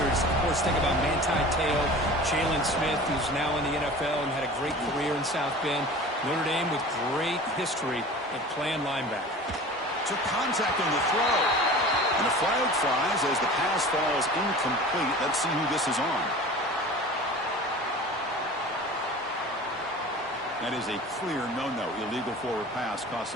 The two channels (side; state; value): both; normal; correlation 0.39